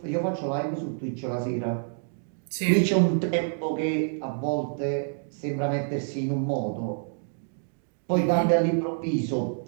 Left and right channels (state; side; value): silent; left; digital silence